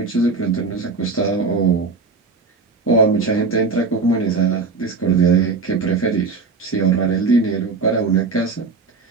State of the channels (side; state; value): left; quieter; 4.4 dB